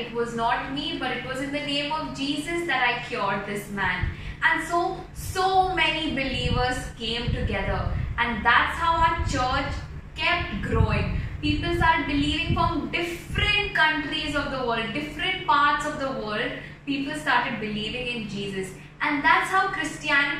it was not me, but it was in the name of Jesus that I cured this man. And so many believers came together, and that's how our church kept growing. People started believing from different countries of the world, different parts of the world. People started believing in Jesus, and that's how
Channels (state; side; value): identical; both; correlation 1.00